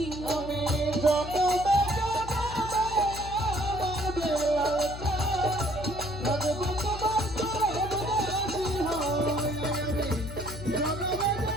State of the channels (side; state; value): left; noise; hum, 10 dB below the sound